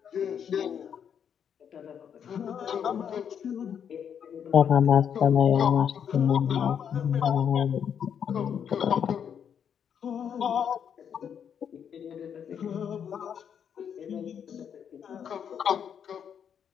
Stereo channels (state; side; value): quieter; right; 8.1 dB